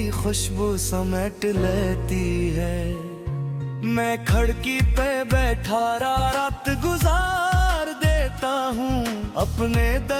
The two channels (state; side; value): identical; both; correlation 1.00